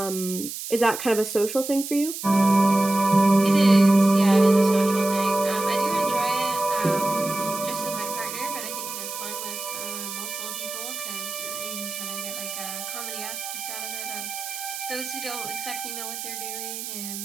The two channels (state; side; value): noise; right; hiss, 8 dB below the sound